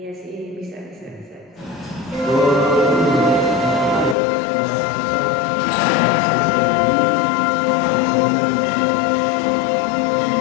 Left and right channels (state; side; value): drops out; right; at 4.2 s